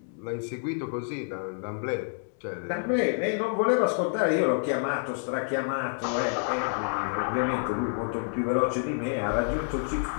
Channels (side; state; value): right; silent; 59 dB below the other